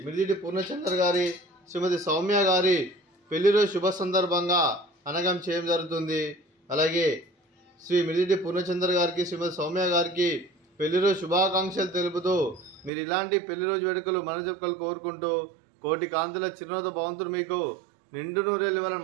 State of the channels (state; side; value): drops out; left; at 12.9 s